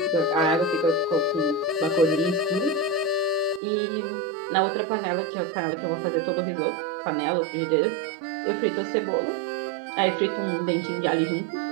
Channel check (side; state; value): left; drops out; at 3.6 s